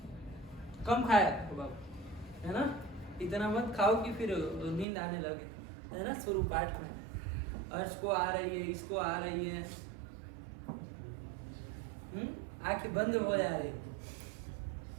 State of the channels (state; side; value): drops out; left; at 4.9 s